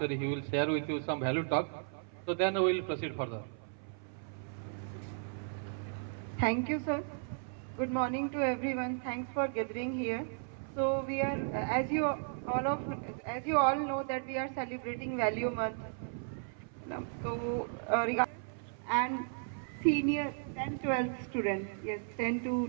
he will share with you some value talk. So then we will proceed further. Thank you, sir. Good morning to everyone. Thanks for gathering here. So we are, as you all know, that we are celebrating Value Month. So and senior 10, 12 students, yes, 10 to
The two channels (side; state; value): left; silent; 54 dB below the other